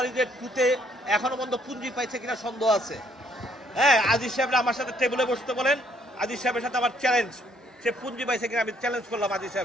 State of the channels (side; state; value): both; normal; correlation 0.67